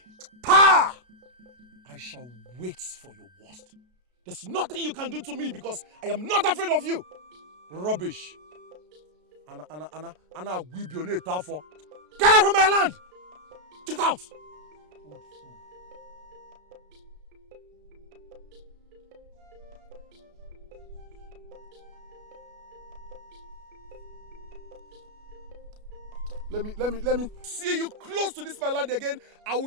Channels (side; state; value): left; late; 33 ms